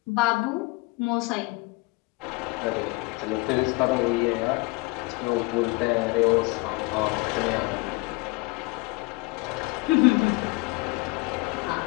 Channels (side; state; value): right; quieter; 25.7 dB